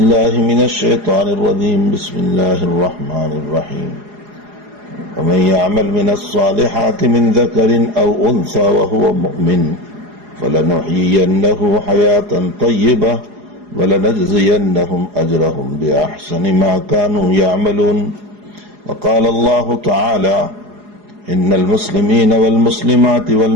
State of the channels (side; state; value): left; late; 4.8 ms